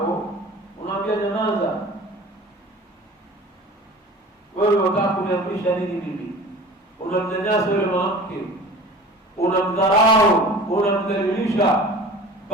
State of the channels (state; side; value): normal; both; correlation 0.41